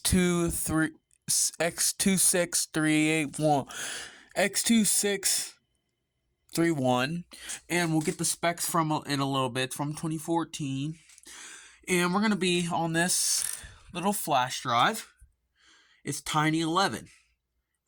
and we'll get the specs from in a little bit. It's from 2014 and we're gonna be on this little flash drive. It's Tiny11.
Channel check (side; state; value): both; identical; correlation 1.00